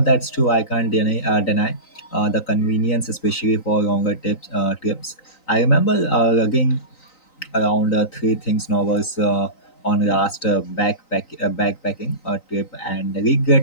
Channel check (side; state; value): right; late; 3.9 ms